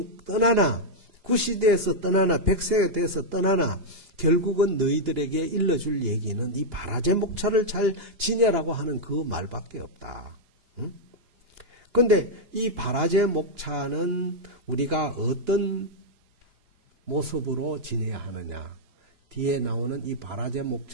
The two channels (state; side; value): late; left; 4.9 ms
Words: 떠나나 90이 되어서 떠나나 100세가 되어서 떠나나 결국은 너희들에게 일러줄 얘기는 이 바라제 목차를 잘 지내라고 하는 그 말밖에 없다. 그런데 이 바라제 목차는 우리가 어떤 모습으로 지내야 하느냐. 뒤에 나오는 이 바라제